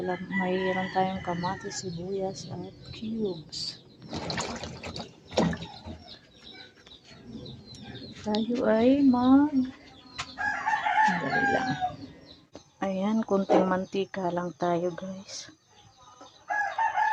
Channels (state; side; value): identical; both; correlation 1.00